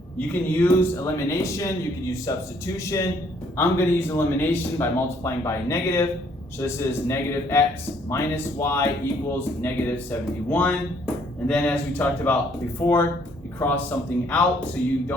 You can use elimination, you can use substitution. I'm going to use elimination by multiplying by a negative. So this is -x minus y equals -71. And then as we talked about before, you cross something out so you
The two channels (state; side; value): normal; both; correlation 0.65